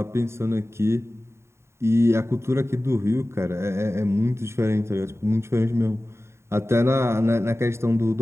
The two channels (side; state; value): left; late; 0.13 ms